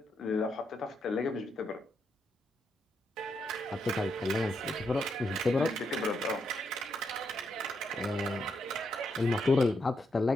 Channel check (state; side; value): normal; both; correlation 0.80